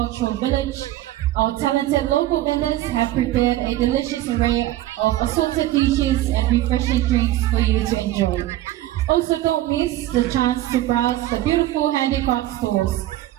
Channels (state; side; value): quieter; left; 15.0 dB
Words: Village. Our talented local vendors have prepared a delicious array of assorted dishes and refreshing drinks for you to enjoy. Also, don't miss the chance to browse the beautiful handicraft stores.